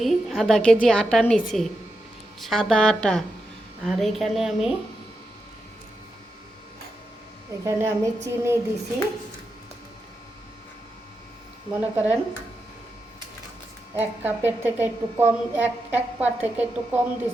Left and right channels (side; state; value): both; normal; correlation 0.87